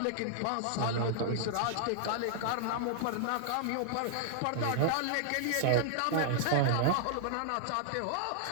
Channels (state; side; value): different; both; correlation -0.01